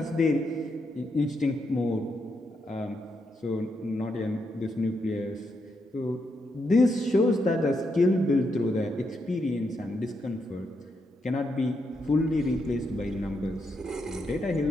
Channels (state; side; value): normal; both; correlation 0.81